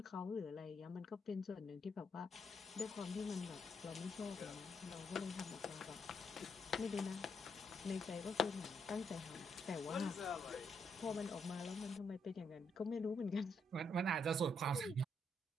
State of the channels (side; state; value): both; normal; correlation 0.77